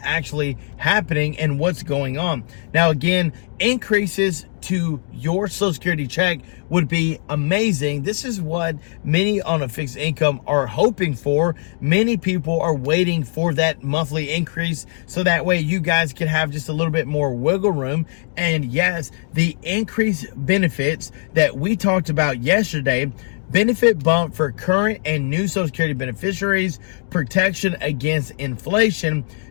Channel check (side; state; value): right; silent; digital silence